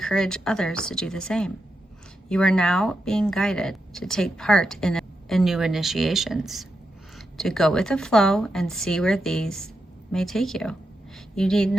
others to do the same. You are now being guided to take part in new initiations, to go with the flow and see where these may take you. You need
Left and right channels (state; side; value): normal; both; correlation 0.86